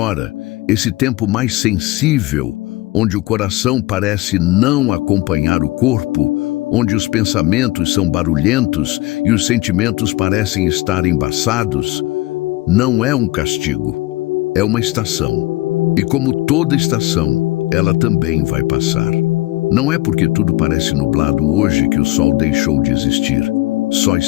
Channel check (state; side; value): quieter; right; 19.3 dB